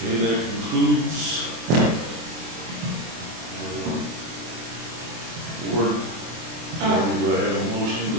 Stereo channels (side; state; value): left; late; 24 ms